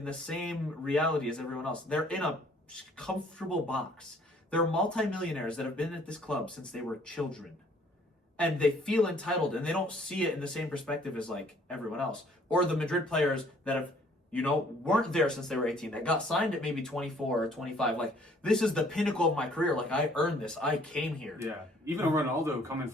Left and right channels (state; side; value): normal; both; correlation 0.60